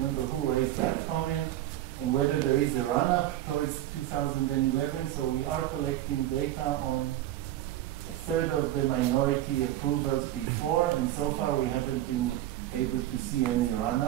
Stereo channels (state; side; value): quieter; left; 13.9 dB